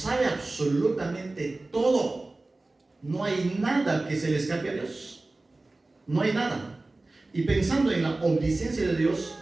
absolutamente todo. No hay nada que se le escape a Dios. No hay nada. Y pensando en la omnisciencia de Dios,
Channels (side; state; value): left; quieter; 3.1 dB